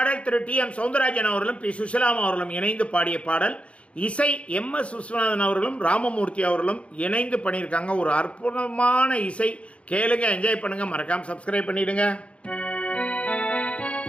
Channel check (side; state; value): right; late; 0.061 ms